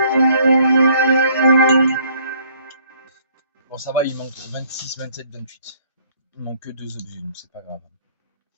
Bon, ça va, il manque 26, 27, 28. Il manque que 2 objets, donc c'est pas grave.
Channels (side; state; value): both; inverted; correlation -0.62